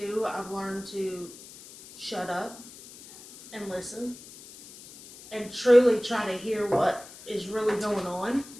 I've learned to shut up and listen and truly try to hear what is really going on.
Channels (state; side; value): noise; left; hiss, 18 dB below the sound